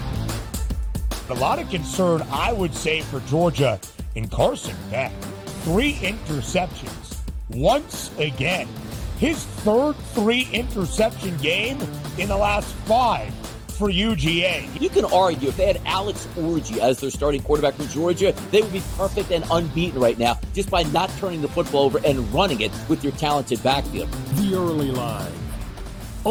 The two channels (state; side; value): identical; both; correlation 1.00